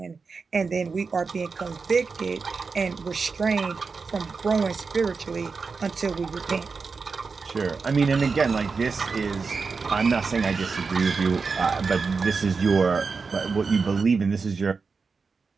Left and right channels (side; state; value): left; quieter; 4.8 dB